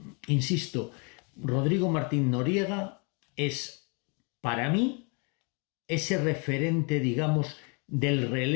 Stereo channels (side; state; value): right; quieter; 34.2 dB